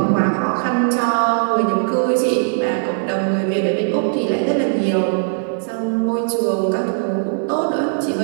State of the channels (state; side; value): silent; left; 67 dB below the other